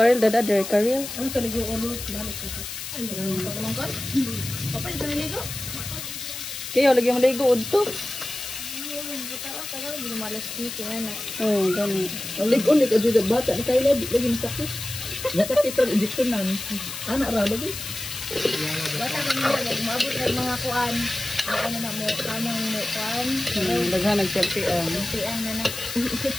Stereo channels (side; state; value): left; noise; hiss, 8 dB below the sound